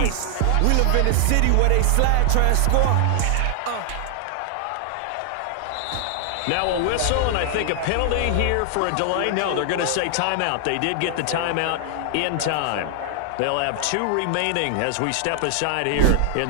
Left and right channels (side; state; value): both; different; correlation 0.00